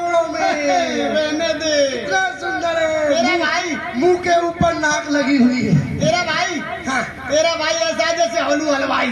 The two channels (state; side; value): identical; both; correlation 1.00